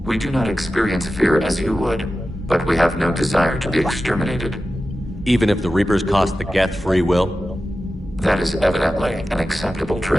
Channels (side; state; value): both; normal; correlation 0.93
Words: We do not experience fear as you would, but we have no desire to be exterminated. Even if the Reapers cost the Geth free will? That is evidently an acceptable